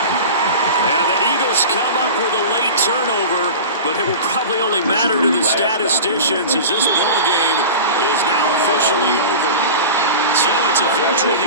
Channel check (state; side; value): inverted; both; correlation -0.32